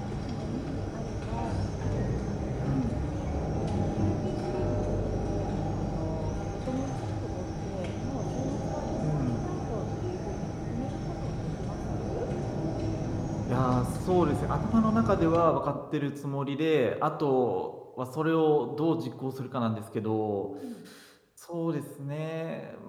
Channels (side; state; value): both; identical; correlation 1.00